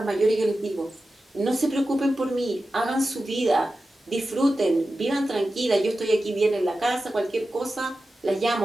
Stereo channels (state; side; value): normal; both; correlation 0.93